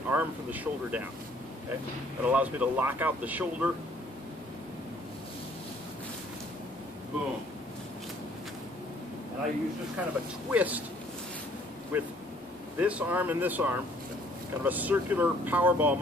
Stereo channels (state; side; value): normal; both; correlation 0.61